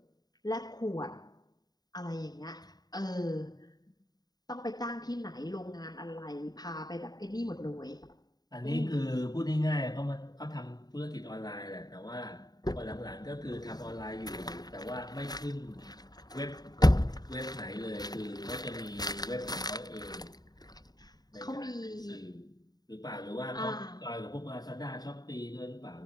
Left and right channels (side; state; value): right; late; 0.19 ms